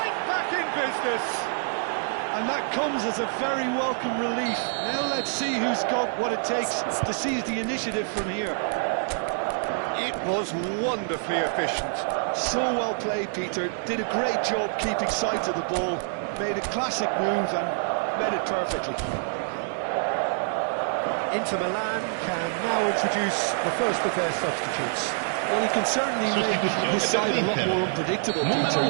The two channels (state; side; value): silent; left; digital silence